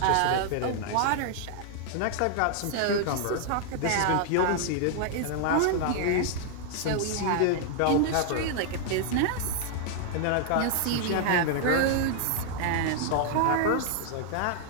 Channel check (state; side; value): different; both; correlation 0.00